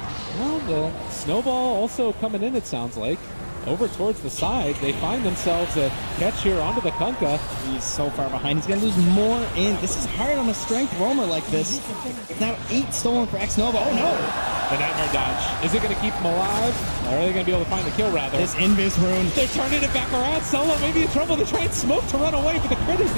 well, the Snowball also coming in, it sounds like. Over towards the side, they find themselves a catch here onto the Kunkka. He's so far behind. He's going to lose more in. This is hard on a strength roamer like this. Now 8 stolen for X-Nova. Oh no! The Nightmare Dodge. Is it going to keep him alive? Or are they going to be able to find the kill, rather? This Invis rune. They're turning it back around. Solo may be in trouble. They try and smoke to run away, but the crit is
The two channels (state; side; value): inverted; both; correlation -1.00